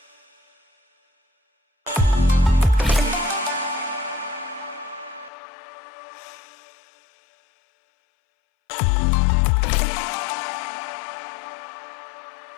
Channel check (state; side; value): drops out; right; at 5.3 s